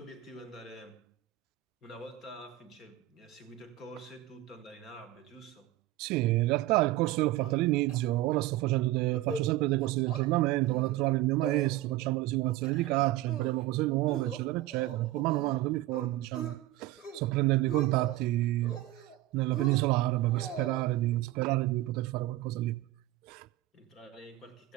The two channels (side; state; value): left; quieter; 15.9 dB